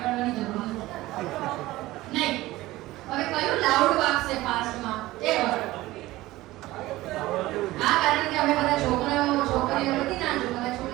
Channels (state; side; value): quieter; left; 17.8 dB